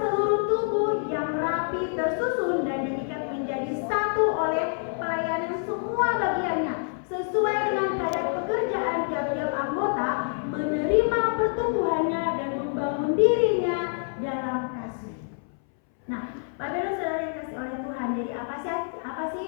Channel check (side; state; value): right; silent; 60 dB below the other